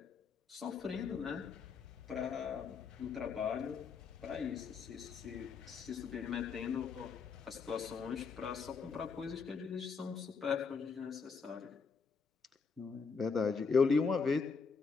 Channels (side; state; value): right; quieter; 5.3 dB